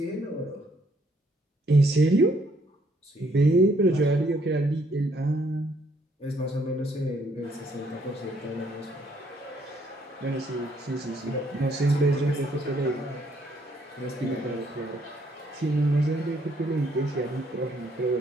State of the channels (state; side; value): normal; both; correlation 0.68